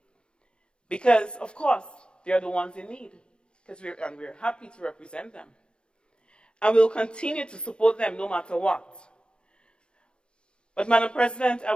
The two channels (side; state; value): right; late; 0.056 ms